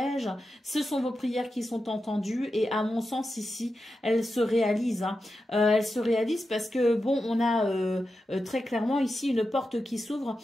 ce sont vos prières qui sont entendues et à mon sens ici, elles se réalisent, hein. Elles se réalisent parce que bon, on a très clairement ici une porte qui s'ouvre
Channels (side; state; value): both; normal; correlation 0.90